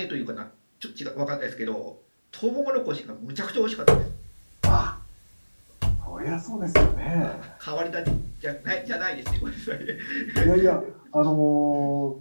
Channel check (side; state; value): both; inverted; correlation -1.00